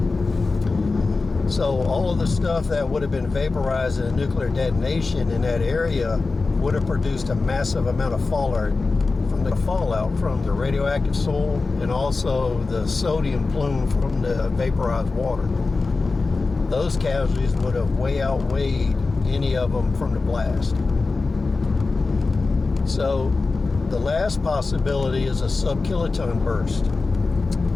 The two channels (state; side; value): quieter; right; 3.9 dB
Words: So all of the stuff that would have been vaporized in a nuclear detonation in that area would have produced a massive amount of fallout from the radioactive soil and also the sodium plume from the vaporized water. Those casualties would have way outweighed any of them from the blast. So the last possibility is a sub-kiloton burst.